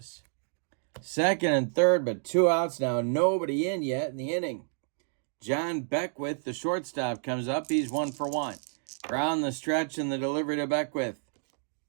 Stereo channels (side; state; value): left; silent; digital silence